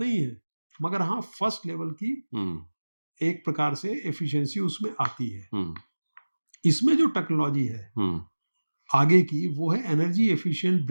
है, मगर हाँ फर्स्ट लेवल की हुँ, एक प्रकार से एफिशिएंसी उसमें आती है. हुँ, इसमें जो टेक्नोलॉजी है हुँ, आगे की, वो है एनर्जी एफिशिएंट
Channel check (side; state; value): both; inverted; correlation -1.00